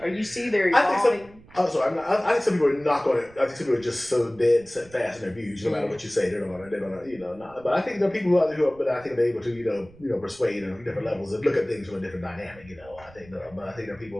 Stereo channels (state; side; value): noise; right; rumble, 23 dB below the sound